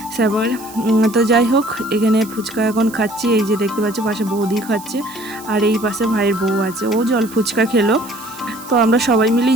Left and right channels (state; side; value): noise; right; hiss, 18 dB below the sound